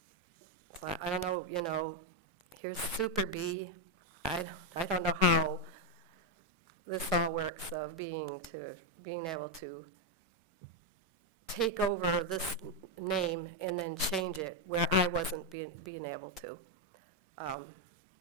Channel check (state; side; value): normal; both; correlation 0.03